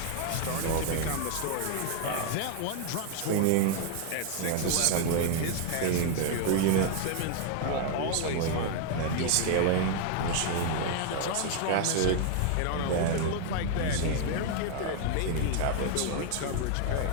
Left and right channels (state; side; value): different; both; correlation 0.00